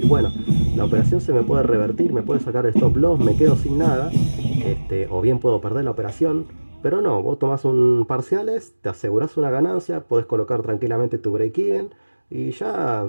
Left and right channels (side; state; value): both; inverted; correlation -1.00